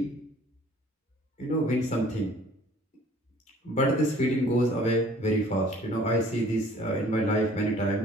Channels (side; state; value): both; normal; correlation 0.53